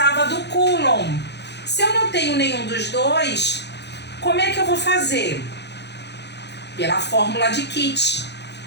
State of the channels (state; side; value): late; right; 0.50 ms